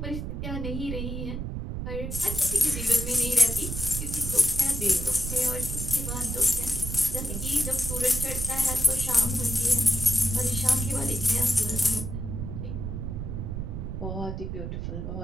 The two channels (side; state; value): right; noise; rumble, 4 dB below the sound